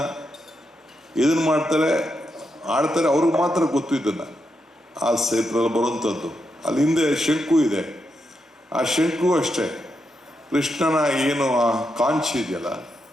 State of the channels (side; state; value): both; normal; correlation 0.84